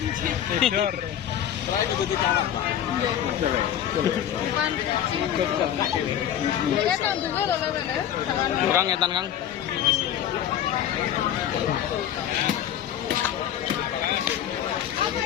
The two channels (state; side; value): quieter; right; 10.5 dB